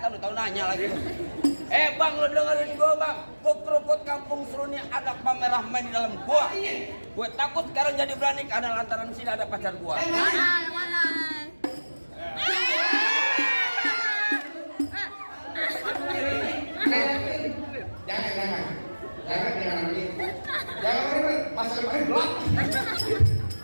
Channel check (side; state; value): both; inverted; correlation -1.00